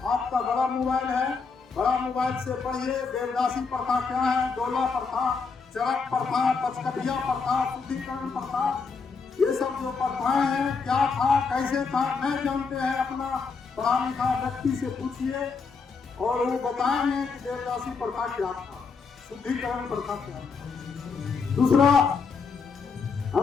आपका बड़ा मोबाइल है, बड़ा मोबाइल से पढ़िए। देवदासी प्रथा क्या है, डोला प्रथा, चरक प्रथा, पचकठिया प्रथा, शुद्धिकरण प्रथा, ये सब जो प्रथाएं हैं, क्या था कैसे था नहीं जानते हैं। अपना पढ़ा लिखा व्यक्ति से पूछिए और वो बताएंगे कि देवदासी प्रथा क्या था, शुद्धिकरण प्रथा क्या था। दूसरा,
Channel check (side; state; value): right; quieter; 5.0 dB